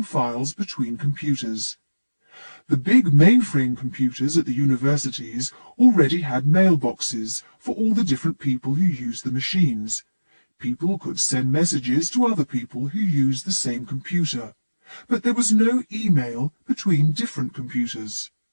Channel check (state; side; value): inverted; both; correlation -1.00